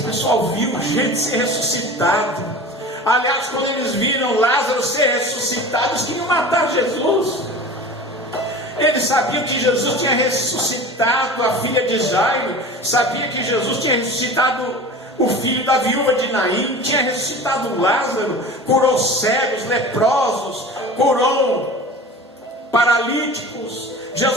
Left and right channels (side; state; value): both; normal; correlation 0.36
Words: pessoal viu gente ser ressuscitado. Aliás, quando eles viram Lázaro ser ressuscitado, eles queriam matar Jesus. Eles sabiam que Jesus tinha ressuscitado a filha de Jairo, sabia que Jesus tinha ressuscitado o filho da viúva de Naim, tinha ressuscitado Lázaro, curou cegos, leprosos, curou paralíticos.